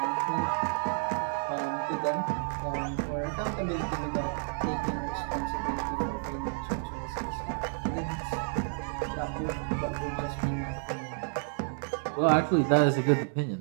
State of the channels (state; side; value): silent; left; digital silence